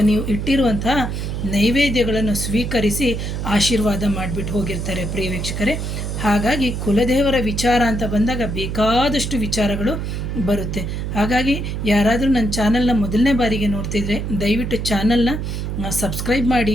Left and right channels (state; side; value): noise; right; hum, 3 dB below the sound